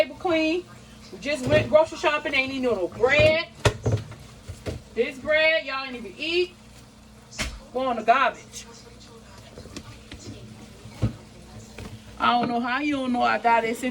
clean. We just went grocery shopping, ain't even no bread. This bread, y'all ain't even eat. Go on the garbage. I don't know how you don't know I got this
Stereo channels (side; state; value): both; identical; correlation 1.00